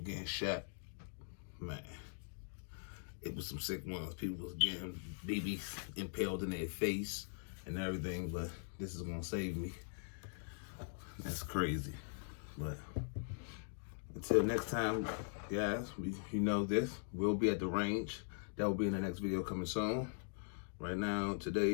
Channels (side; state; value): right; silent; digital silence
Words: shot. Man, it was some sick ones. People was getting BBs impaled in their face and everything, but this is gonna save me. That's crazy. But until next time, guys, you know this. We'll be at the range. That will be in the next video coming soon. Right now,